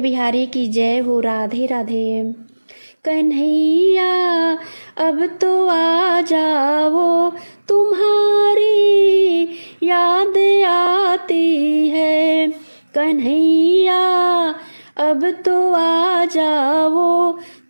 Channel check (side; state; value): both; inverted; correlation -1.00